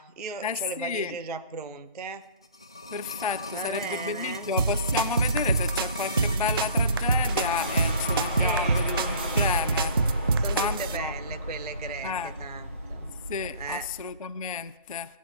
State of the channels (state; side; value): inverted; both; correlation -0.46